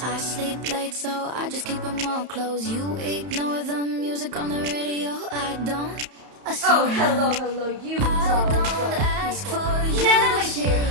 sleep late, so I just keep them all closed. You ignore the music on the radio. I don't. Oh, hello, you I don't ask people. for you Nana, my to dear,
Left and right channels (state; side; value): late; left; 31 ms